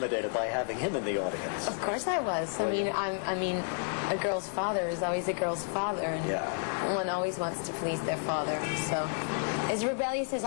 by having him in the audience? Of course I was. I mean, a girl's father is always a girl's father, and one always wants to please their father. So, as rebellious as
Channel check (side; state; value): right; silent; digital silence